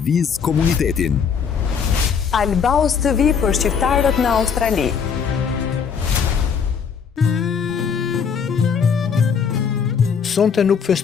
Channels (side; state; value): right; quieter; 6.6 dB